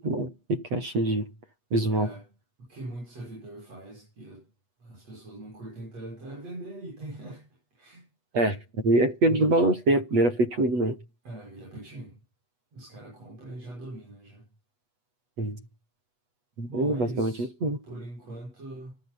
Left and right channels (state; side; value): late; left; 8.2 ms